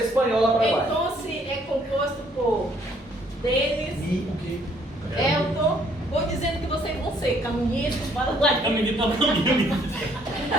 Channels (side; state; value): both; normal; correlation 0.64